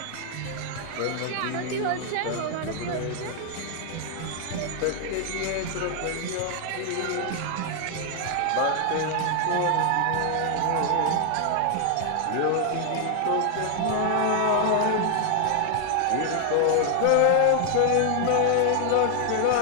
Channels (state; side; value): different; both; correlation 0.00